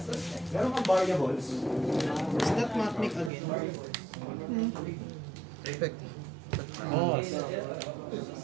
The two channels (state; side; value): drops out; left; at 3.3 s